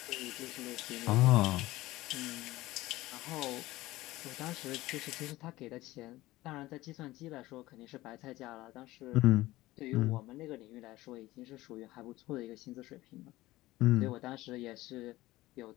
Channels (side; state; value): right; quieter; 17.8 dB